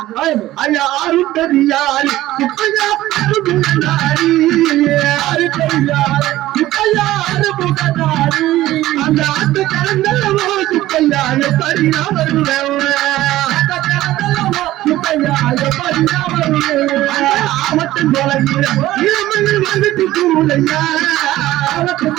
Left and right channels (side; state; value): left; quieter; 15.5 dB